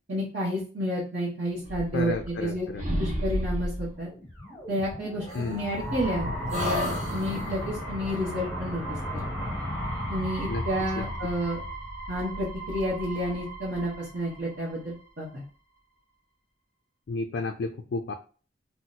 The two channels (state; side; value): normal; both; correlation 0.54